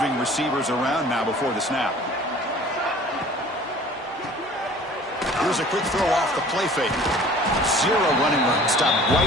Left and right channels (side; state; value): both; normal; correlation 0.48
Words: receivers around now before the snap. Here's a quick throw off the play fake. Zero running room. Stopped right